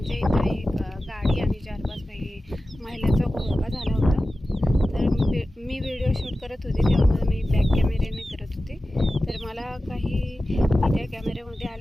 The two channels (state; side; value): normal; both; correlation 0.94